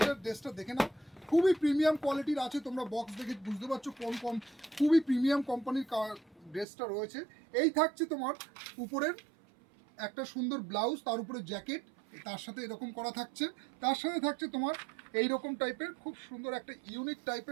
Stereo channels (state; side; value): drops out; left; at 6.7 s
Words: ড্রেসটা দেখে নাও। খুবই প্রিমিয়াম কোয়ালিটির আছে, তোমরা বক্স দেখে বুঝতে পারছো কোন খুবই প্রিমিয়াম কোম্পানির ড্রেসটা রয়েছে। এই থাকছে তোমার উপরের একটা সুন্দর ব্লাউজ, তার উপরে জ্যাকেট, তার সাথে এরকম করা থাকছে। তার সাথে থাকছে তোমার এইরকম টাইপের খুব সুন্দর একটা ইউনিক